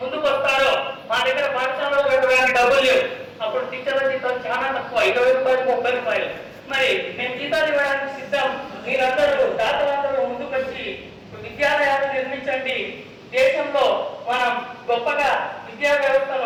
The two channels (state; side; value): identical; both; correlation 1.00